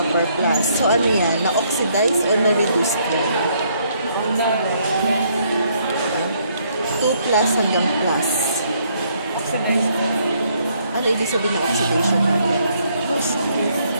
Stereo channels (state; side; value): inverted; both; correlation -0.69